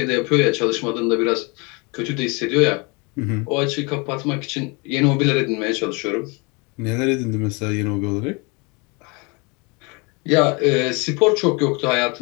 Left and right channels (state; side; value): quieter; right; 29.5 dB